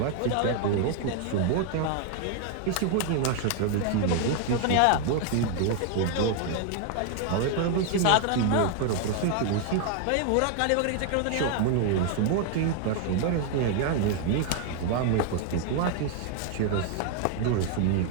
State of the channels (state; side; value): different; both; correlation 0.00